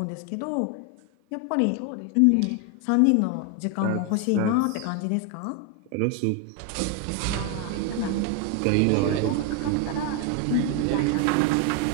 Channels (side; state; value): both; different; correlation 0.01